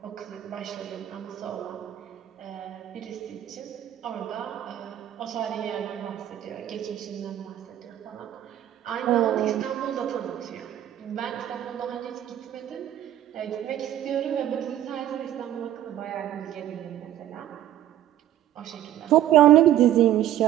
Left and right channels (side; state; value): left; quieter; 12.1 dB